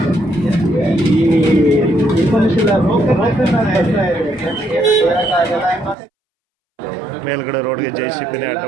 ಮೇಲ್ಗಡೆ ರೋಡ್ಗೆ JCB ಅಡ್ಡ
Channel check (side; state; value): left; drops out; at 6.0 s